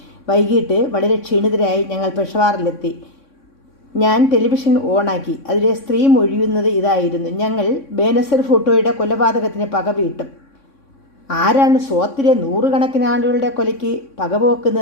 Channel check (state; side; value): late; right; 3.6 ms